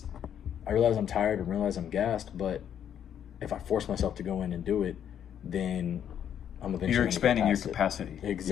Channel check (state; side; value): quieter; right; 9.4 dB